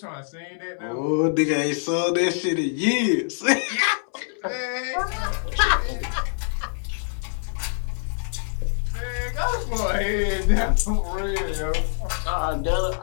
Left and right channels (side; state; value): right; silent; digital silence